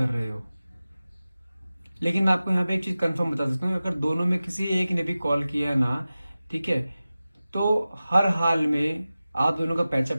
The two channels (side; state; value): both; inverted; correlation -0.96